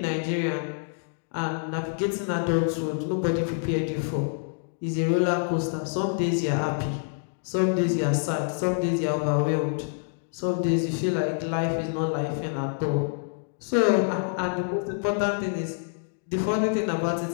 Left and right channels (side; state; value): right; silent; digital silence